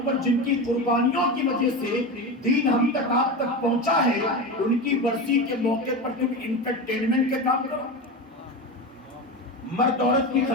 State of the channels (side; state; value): both; normal; correlation 0.22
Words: پر جن کی قربانیوں کی وجہ سے دین ہم تک آپ تک پہنچا ہے، ان کی برسی کے موقع پر تم انٹرٹینمنٹ کے کام کرو. مرد عورت کی